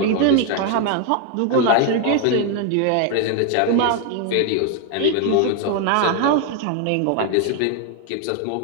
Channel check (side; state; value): both; different; correlation 0.01